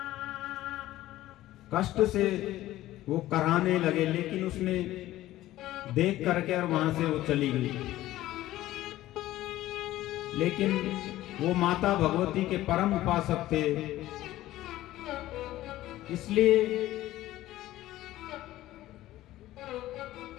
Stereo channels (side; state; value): right; quieter; 15.3 dB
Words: कष्ट से वो कराहने लगे, लेकिन उसने देख करके और वहां से वो चली गई। लेकिन वो माता भगवती के परम उपासक थे, इसलिए